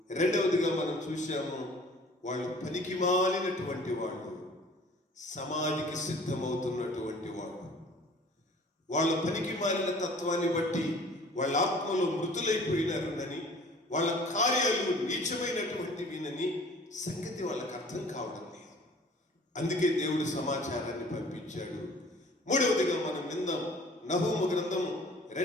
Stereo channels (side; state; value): both; normal; correlation 0.50